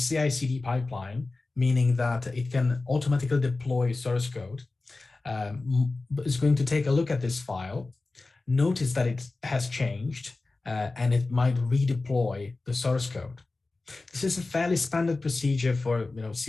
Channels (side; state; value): right; quieter; 3.4 dB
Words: pipeline, meaning that it can automatically deploy source code, is going to take a look at this file, notice that it has changed, and it might redeploy the source code. This is a fairly standard procedure for